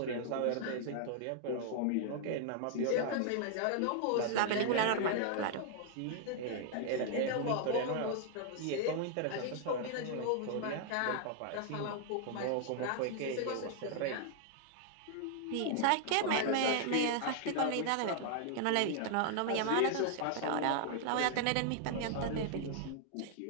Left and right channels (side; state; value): both; different; correlation 0.00